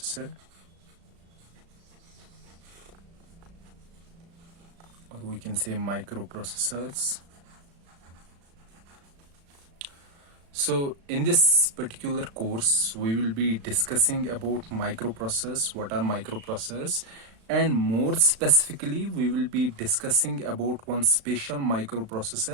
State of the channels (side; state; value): left; late; 36 ms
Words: or we can say microprocessors. So in this particular course we will be discussing about microprocessors, what are microprocessors, and more specifically we will be discussing about one special